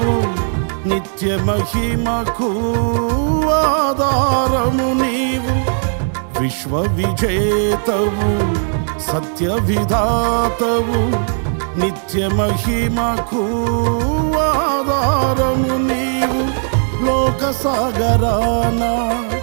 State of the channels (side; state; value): left; silent; digital silence